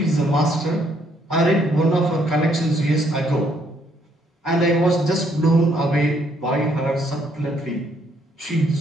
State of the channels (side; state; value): both; normal; correlation 0.69